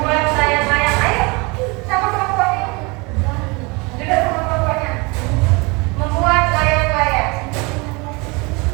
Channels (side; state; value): left; quieter; 27.5 dB